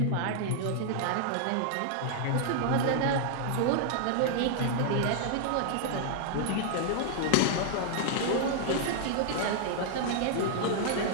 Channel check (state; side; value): different; both; correlation -0.01